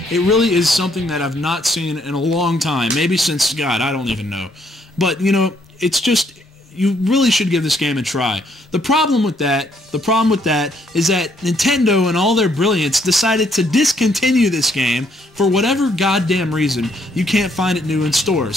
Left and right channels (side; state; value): both; normal; correlation 0.70